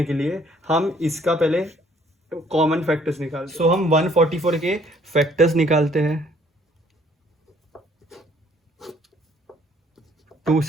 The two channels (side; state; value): both; normal; correlation 0.62